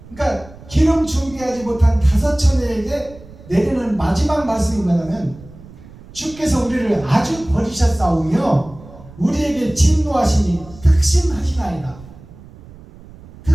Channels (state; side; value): noise; right; rumble, 20 dB below the sound